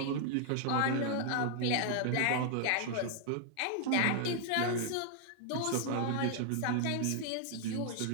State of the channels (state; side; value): different; both; correlation 0.00